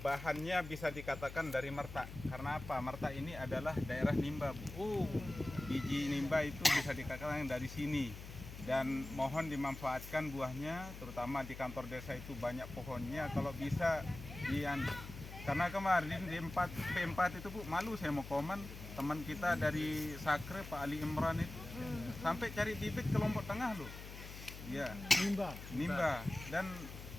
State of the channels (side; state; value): left; noise; hum, 12 dB below the sound